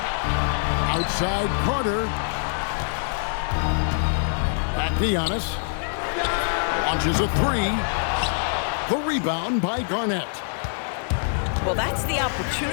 Outside Carter. Back to Giannis. Launches a 3. The rebound by Garnett. Well, that's the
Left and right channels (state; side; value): silent; right; 62 dB below the other